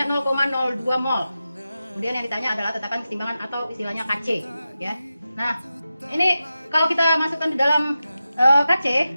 0,02 mol. Kemudian yang ditanya adalah tetapan kesetimbangan atau istilahnya KC ya. Nah, ini kalau kita masukkan di dalam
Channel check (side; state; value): both; inverted; correlation -0.92